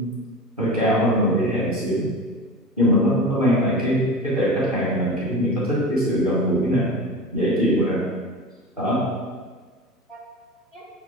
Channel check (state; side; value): normal; both; correlation 0.32